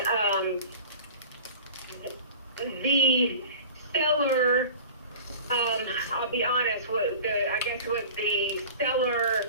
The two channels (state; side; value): inverted; both; correlation -0.39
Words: the seller, I'll be honest, what the seller